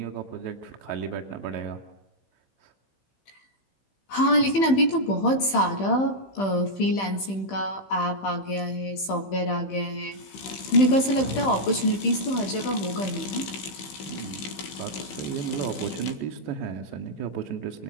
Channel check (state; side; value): late; right; 15 ms